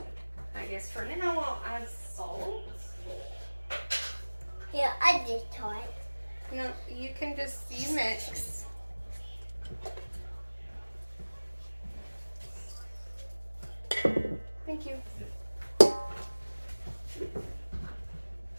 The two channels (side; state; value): both; inverted; correlation -1.00